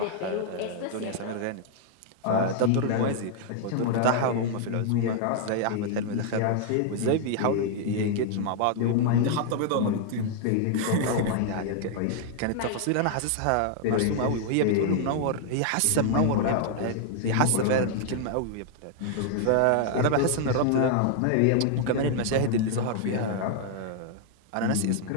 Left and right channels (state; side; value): different; both; correlation 0.00